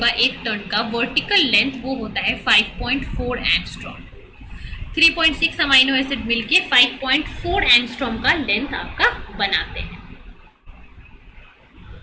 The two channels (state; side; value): identical; both; correlation 1.00